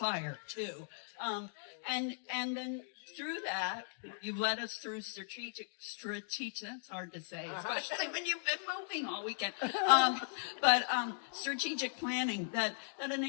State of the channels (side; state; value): right; silent; digital silence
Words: too. And then through that, you've led us through strategic, that's hard to say, especially when you've been moving all weekend. But strategic planning that